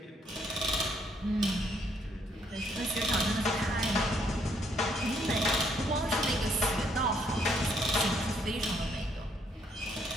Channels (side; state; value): both; normal; correlation 0.69